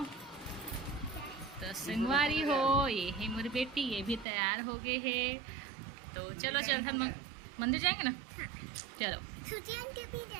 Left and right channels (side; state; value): left; drops out; at 4.2 s